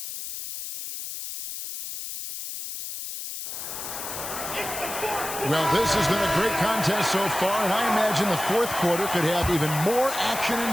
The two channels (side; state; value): left; noise; hiss, 7 dB below the sound